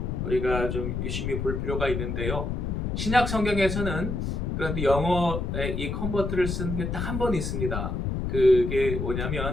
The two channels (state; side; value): noise; left; rumble, 2 dB below the sound